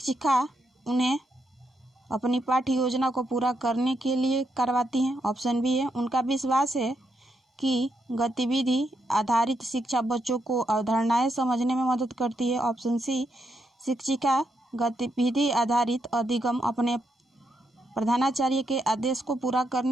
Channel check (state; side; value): normal; both; correlation 0.80